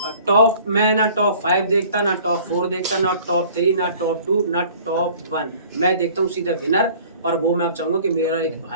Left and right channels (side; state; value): both; inverted; correlation -0.50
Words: टॉप मैं ना टॉप 5 देखता, ना टॉप 4 देखता, ना टॉप 3, ना टॉप 2, ना टॉप 1। मैं देखता हूँ सीधा विनर, और वो मैं अब चाहूँगा कि मेरा एक